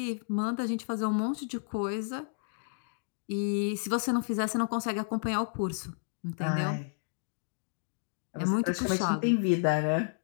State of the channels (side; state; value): right; silent; digital silence